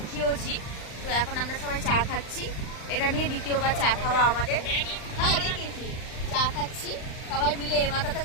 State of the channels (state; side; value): late; right; 39 ms